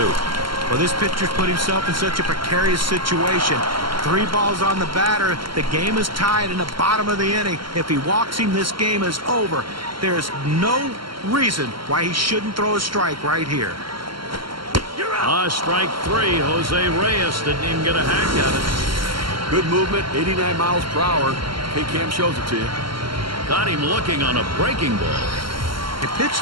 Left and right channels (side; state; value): left; late; 0.74 ms